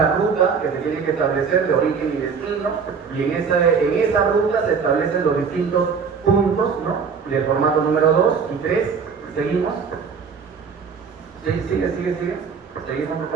ruta que se tiene que establecer de origen y destino, y en esa ruta se establecen los distintos puntos, ¿no? Del formato número 2 y 3. Seguimos. Sigue. Seguimos, por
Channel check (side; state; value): left; quieter; 5.9 dB